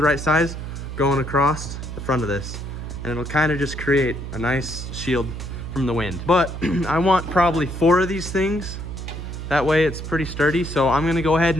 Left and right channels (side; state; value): right; noise; hum, 8 dB below the sound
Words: right size, going across the front of this, and it'll kind of just create a nice shield from the wind. But I want probably 4 of these things. That way it's pretty sturdy. So I'm gonna go ahead